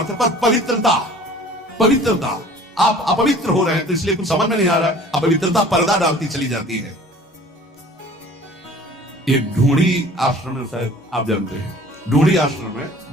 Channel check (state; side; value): normal; both; correlation 0.48